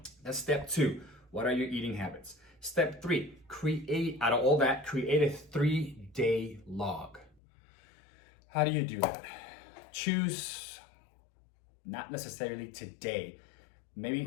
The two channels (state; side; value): drops out; right; at 7.4 s